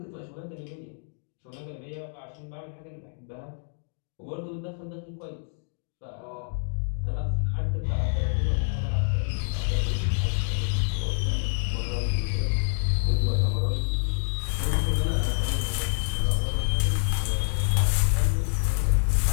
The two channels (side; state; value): right; silent; digital silence